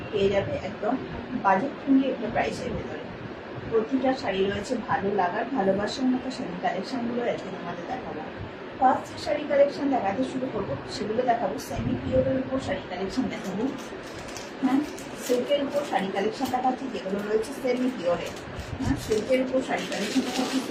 পেয়ে যাবে একদম বাজেট ফ্রেন্ডলি একটা প্রাইসের ভেতরে। প্রতিটা শাড়ি রয়েছে ভালো লাগার ভালোবাসার মতো শাড়ি কালেকশনগুলো আজকে তোমাদের দেখাবো। ফার্স্ট যে শাড়ি কালেকশন দেখাতে শুরু করবো সেগুলো দেখাবো। সেমি পিওরের উপর শাড়ি কালেকশন দেখাবো। হ্যাঁ, সিল্কের উপর শাড়ি কালেকশন দেখাচ্ছি যেগুলো রয়েছে সেমি পিওরের। হ্যাঁ, সিল্কের উপর শাড়ি কালেকশন দেখাচ্ছি,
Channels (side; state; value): both; identical; correlation 1.00